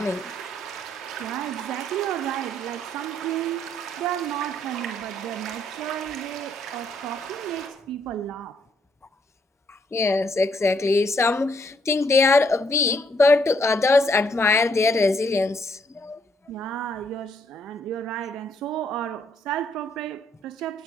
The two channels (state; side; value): normal; both; correlation 0.70